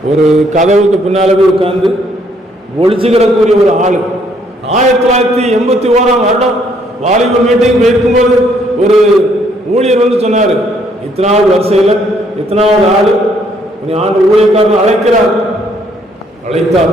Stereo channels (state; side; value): normal; both; correlation 0.68